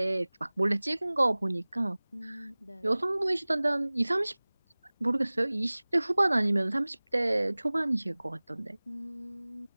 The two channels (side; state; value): both; inverted; correlation -1.00